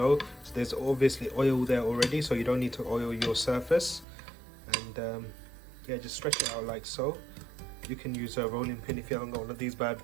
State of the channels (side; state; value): left; drops out; at 4.0 s